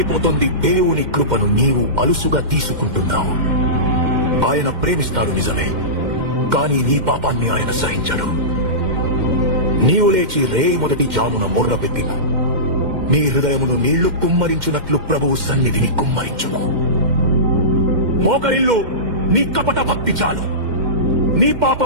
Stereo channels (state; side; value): late; left; 2.1 ms